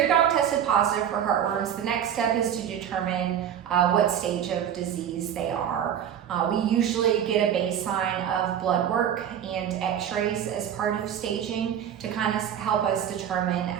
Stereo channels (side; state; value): left; quieter; 9.3 dB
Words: dog tested positive for heartworms, the next step is to determine what stage of disease they are. We usually get a baseline of blood work and x-rays as part of staging to kind of help us determine